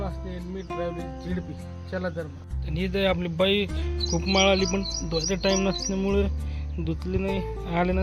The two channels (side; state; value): both; identical; correlation 1.00